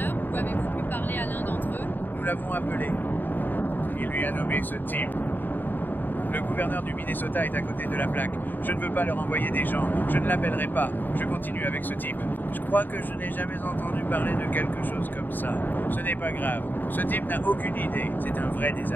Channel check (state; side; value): late; right; 0.090 ms